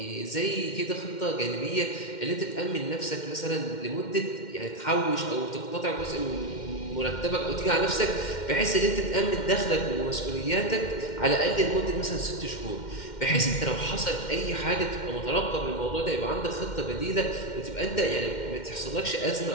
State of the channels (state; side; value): late; right; 2.1 ms